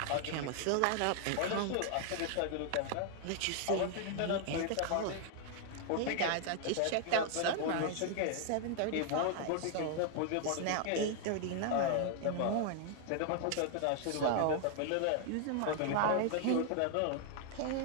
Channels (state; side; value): different; both; correlation 0.00